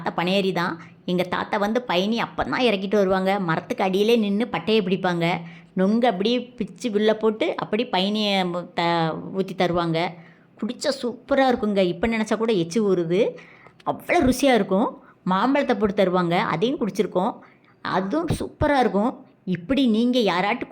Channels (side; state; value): both; identical; correlation 1.00